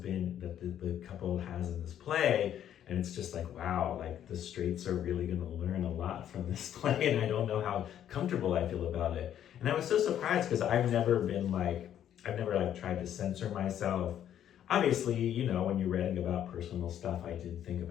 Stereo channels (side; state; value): right; quieter; 10.4 dB